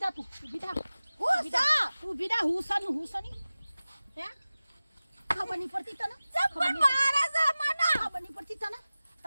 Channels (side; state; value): both; inverted; correlation -0.97